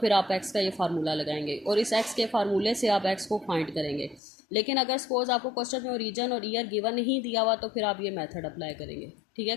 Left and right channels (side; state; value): right; drops out; at 4.2 s